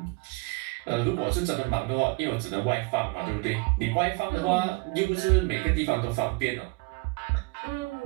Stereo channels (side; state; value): left; quieter; 25.9 dB